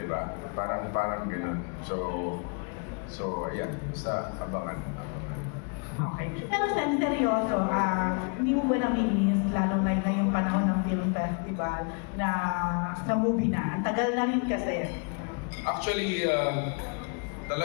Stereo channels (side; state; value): right; quieter; 37.5 dB